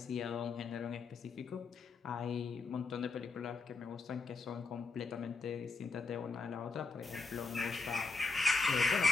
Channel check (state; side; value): quieter; right; 4.2 dB